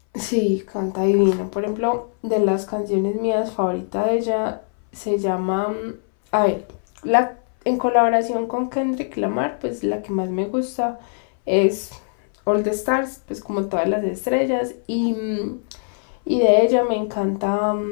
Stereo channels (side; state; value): right; silent; 62 dB below the other